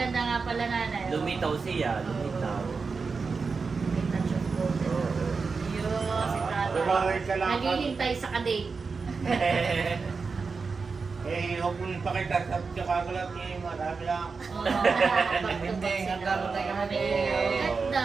nga pala nanay. Lumitaw siya, lumitaw. Yo, si tatay. Naghihintay sa kadate. Huwag mo nang pakita sa kakagulat niya. Marami lang. Hindi, nagkaroon tayo kami.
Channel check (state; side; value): quieter; left; 4.8 dB